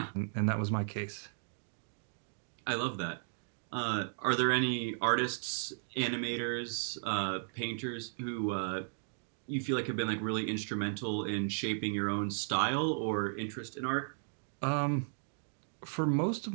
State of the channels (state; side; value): silent; left; digital silence